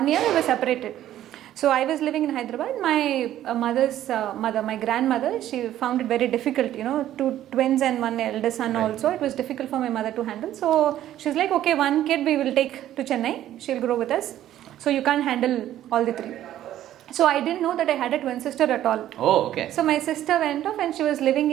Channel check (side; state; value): left; quieter; 12.5 dB